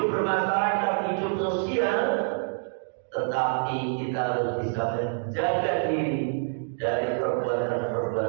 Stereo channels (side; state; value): left; silent; digital silence